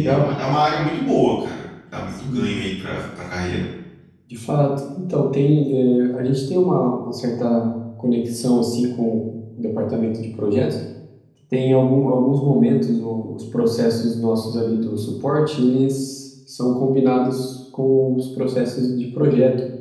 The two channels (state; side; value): identical; both; correlation 1.00